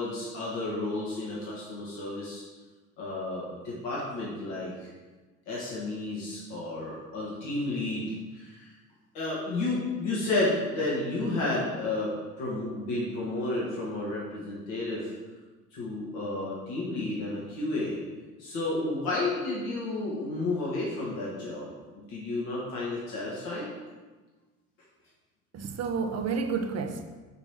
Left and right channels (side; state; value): both; normal; correlation 0.32